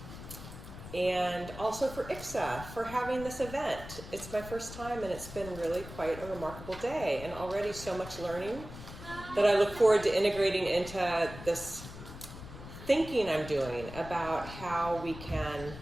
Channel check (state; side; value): noise; left; rumble, 13 dB below the sound